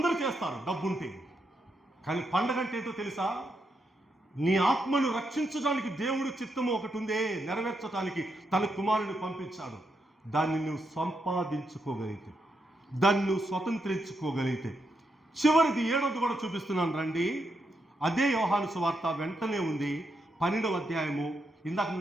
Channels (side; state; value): both; normal; correlation 0.82